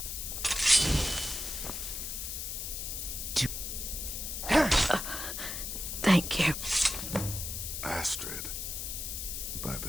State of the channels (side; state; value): left; noise; hiss, 4 dB below the sound